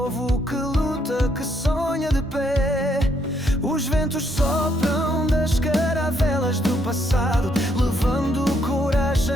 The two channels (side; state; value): both; normal; correlation 0.73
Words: que luta, que sonha de pé. Os ventos sopram das caravelas do passado, levando